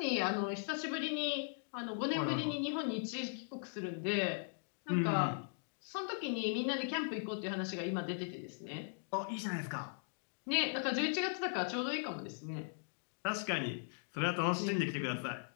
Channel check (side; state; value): right; silent; digital silence